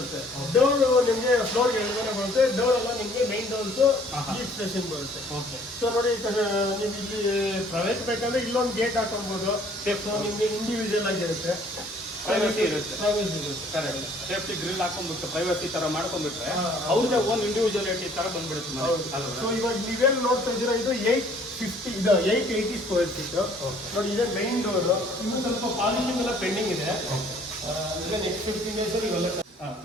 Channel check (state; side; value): normal; both; correlation 0.58